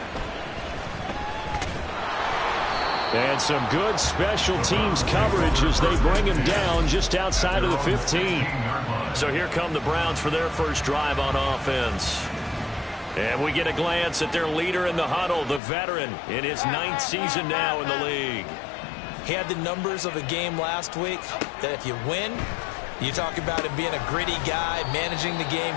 And some good special teams coverage as they bring him down just outside of the 15. So here come the Browns for their first drive on offense. And we get a glance at their leader in the huddle, the veteran, in his 9th season now in the league. He had the numbers of a game last week that if you win, you talk about him being a gritty guy, managing the game,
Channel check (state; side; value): drops out; right; at 15.6 s